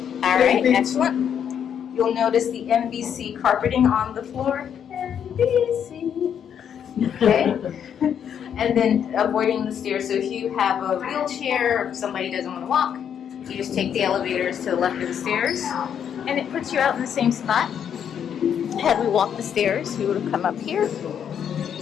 All right, excellent. You'll notice the NBC carpeting on the floor. NBC. Okay. And then avoiding the stairs. So if you have a wheelchair, or if somebody doesn't want to walk, you just take the elevators to the left of the stairs. And it puts you out in the same spot. Had we walked the stairs, we would have come up here.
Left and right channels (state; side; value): quieter; right; 8.5 dB